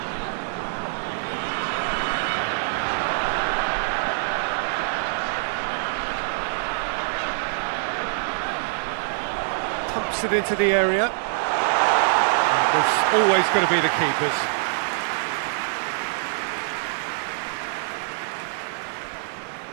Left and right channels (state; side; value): silent; left; 62 dB below the other